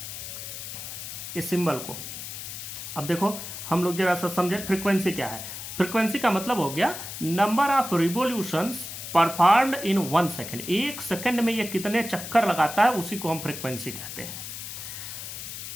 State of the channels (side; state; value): left; noise; hiss, 9 dB below the sound